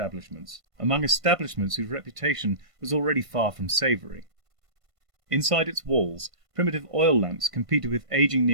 among establishments whose reputation was already far from savoury. Inside its walls, primitive oil lamps competed with aging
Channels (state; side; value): late; left; 1.5 ms